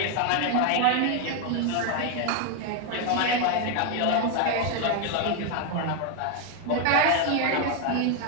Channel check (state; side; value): different; both; correlation 0.01